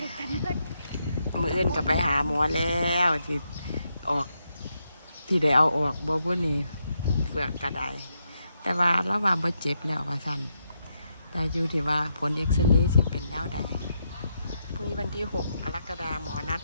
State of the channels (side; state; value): both; inverted; correlation -0.81